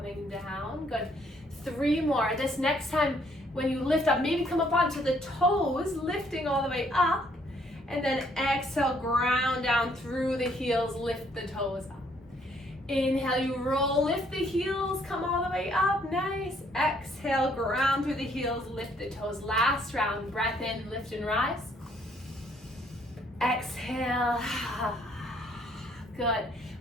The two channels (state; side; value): normal; both; correlation 0.66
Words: down, good. 3 more. This next time when you lift up, maybe come up onto the toes, lifting all the way up. And then exhale, ground down through the heels, lift the toes up. Inhale, you roll, lift the heels, come all the way up, nice. Exhale, ground through the heels, lift the toes. Last round, breath in, lift and rise. Exhale, good.